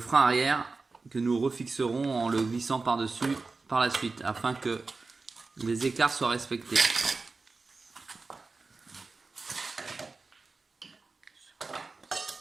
arrière que nous refixerons en le glissant par-dessus par la suite afin que les écarts soient respectés.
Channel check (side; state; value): left; quieter; 4.0 dB